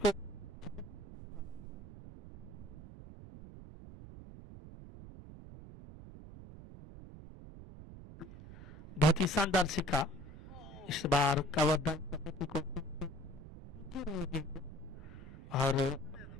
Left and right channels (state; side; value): noise; right; rumble, 14 dB below the sound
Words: बहुत ही शानदार सिक्का। इस बार कवर ड्राइव करने की कोशिश की और